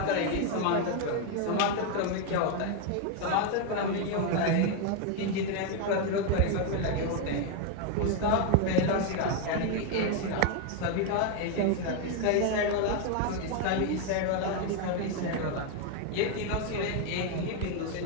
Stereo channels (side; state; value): both; different; correlation 0.01